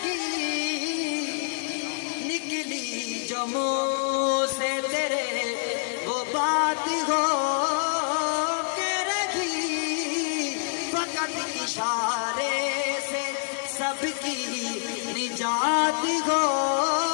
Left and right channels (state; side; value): silent; right; digital silence